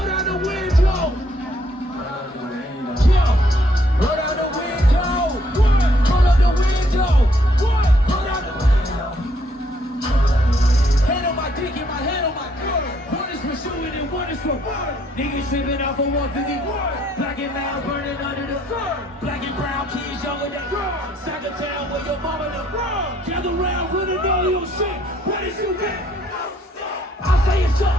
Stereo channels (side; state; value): both; normal; correlation 0.68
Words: down the window. Yeah. Go down the window. What? Go down the window. What? Go down the window. Hand on my dick and my hand on my girl. One is for shooting and one is for fun. Niggas tripping off of 151. Black and loud burning under the sun. Black and brown kids younger than girls. Sack of town where your mama the world. Gather round with a know your shit. What is you get? I say it's